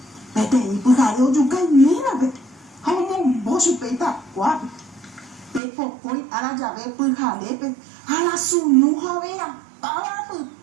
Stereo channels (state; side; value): drops out; left; at 5.6 s